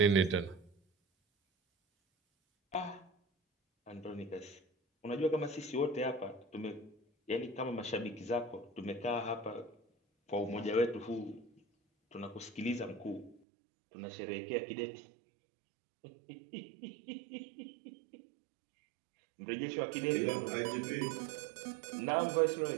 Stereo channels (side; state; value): left; drops out; at 13.4 s